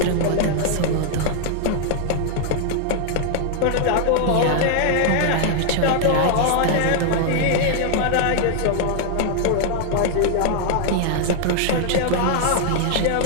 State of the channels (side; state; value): both; different; correlation 0.00